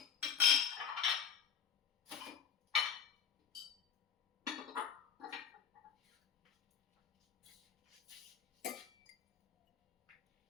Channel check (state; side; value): quieter; right; 7.6 dB